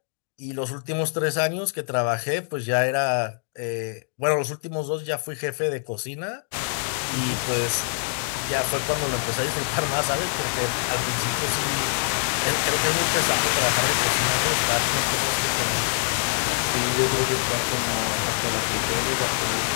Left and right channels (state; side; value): silent; right; digital silence